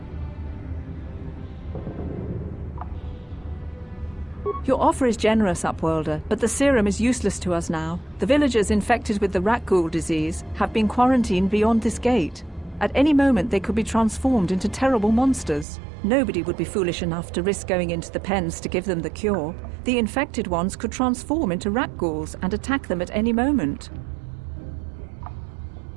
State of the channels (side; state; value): left; drops out; at 15.7 s